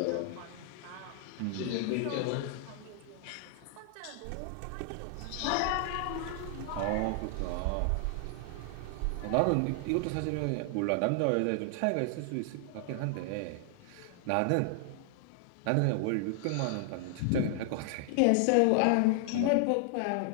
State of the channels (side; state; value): both; different; correlation 0.00